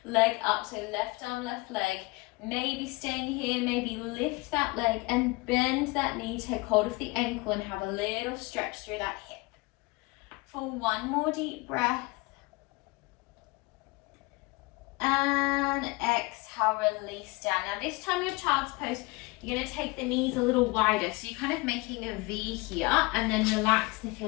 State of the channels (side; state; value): right; quieter; 24.5 dB